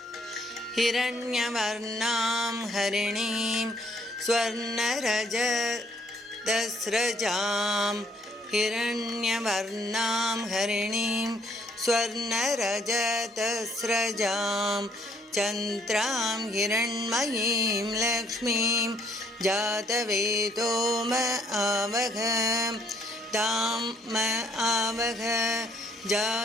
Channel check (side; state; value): both; normal; correlation 0.66